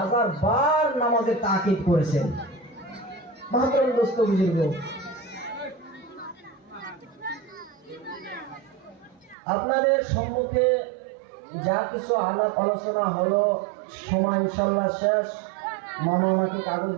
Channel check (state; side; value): drops out; left; at 9.3 s